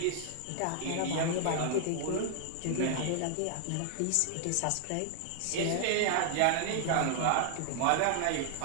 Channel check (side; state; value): both; different; correlation -0.01